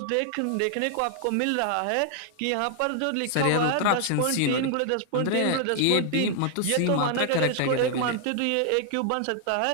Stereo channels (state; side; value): different; both; correlation 0.00